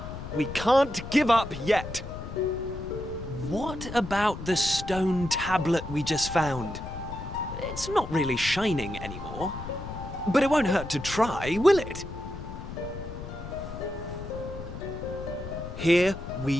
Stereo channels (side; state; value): left; noise; rumble, 10 dB below the sound